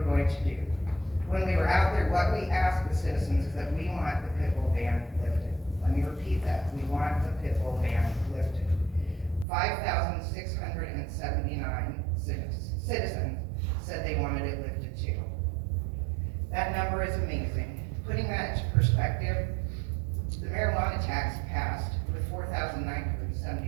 going to do. When we were out there, what we asked the citizens is that we want the pit bull ban lifted. Let me repeat that. We want the pit bull ban lifted. 5,679 citizens said they wanted it lifted too. That number is amazing. Putting that into perspective, the marijuana tax passed with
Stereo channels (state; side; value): drops out; left; at 9.5 s